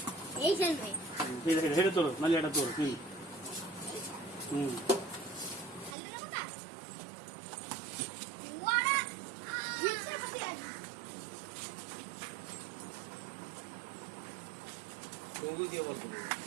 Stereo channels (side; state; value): left; drops out; at 6.0 s